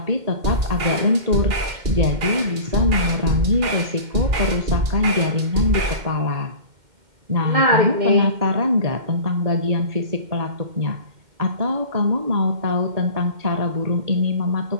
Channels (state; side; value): late; left; 2.1 ms